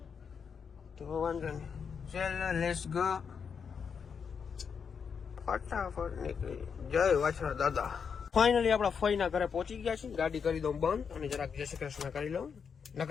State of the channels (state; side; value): quieter; right; 6.4 dB